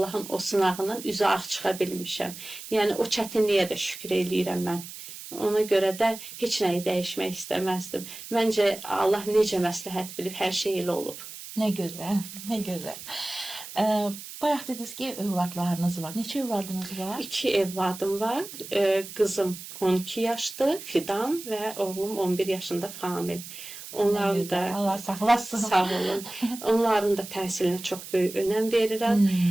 o sınağından üzü ağ çıxa bilmişəm. Yəni, o çətinliyə də şükür eləyirəm mən. Ona görə də heç nəyi dəyişmək istəməzdim. Məncə, Allah necə məsləhət bilib, hər şey elə olub. Nə gözəl, nə gözəl. Bayaq dediniz ki, övladlarınız var. Neçə övladınız var? 2 evladım var. Qızım 12 yaşdır, Fidan və oğlum 11 yaşında Famil. Onların da Allah saxlasın. Sağ olun. Onların da təhsilinə çox böyük önəm verirəm.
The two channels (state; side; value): noise; right; hiss, 12 dB below the sound